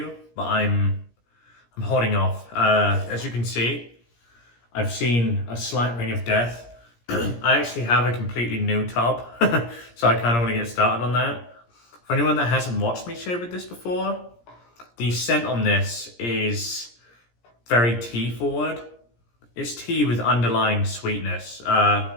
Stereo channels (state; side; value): late; right; 17 ms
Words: but I'm holding off. As you can see, I've seen a slight ring of death. I actually have a completely new tub, so I kind of want to get started on that. For anyone that hasn't watched me shave with this before, the scent on this is very tea forward. It's tea with underlying sweetness.